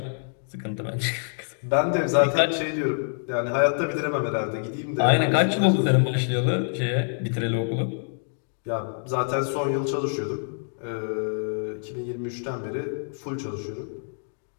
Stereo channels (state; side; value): silent; right; digital silence